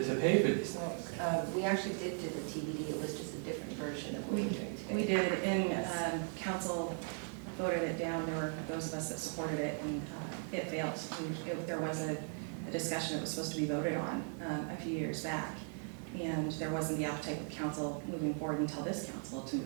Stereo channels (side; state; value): left; silent; 52 dB below the other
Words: pay for these things. we actually did do the TBD, it was just a different version of what we're doing today. We did, and council voted it down. There were those of us that supported it, and it failed. There was a discussion that was supposed to be voted on a few years back, and there wasn't the appetite of council moving forward until this council to